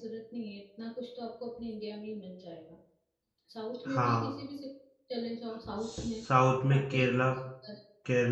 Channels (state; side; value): identical; both; correlation 1.00